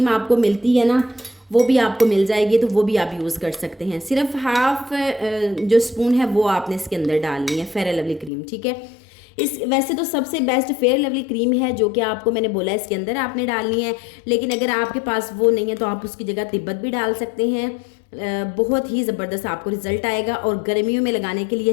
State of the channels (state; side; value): drops out; right; at 8.3 s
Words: आपको मिलती है ना वो भी आपको मिल जाएगी, तो वो भी आप यूज़ कर सकते हैं। सिर्फ हाफ जो स्पून है वो आपने इसके अंदर डालनी है फेयर लवली क्रीम। ठीक है, वैसे तो सबसे बेस्ट फेयर लवली क्रीम है जो कि आपको मैंने बोला इसके अंदर आपने डालनी है, लेकिन अगर आपके पास वो नहीं है तो आप उसकी जगह तिब्बत भी डाल सकते हैं। बहुत ही ज़बरदस्त आपको रिजल्ट आएगा और गर्मियों में लगाने के लिए